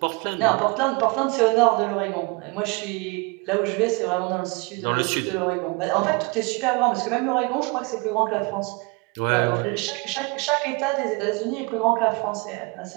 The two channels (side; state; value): left; quieter; 28.7 dB